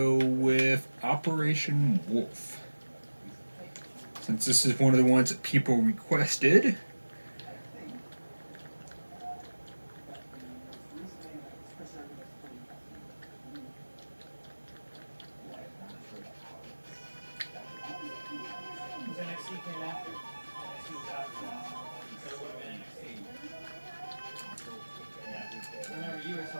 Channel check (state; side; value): inverted; both; correlation -1.00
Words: with Operation Wolf. Since this is one of the ones that people requested.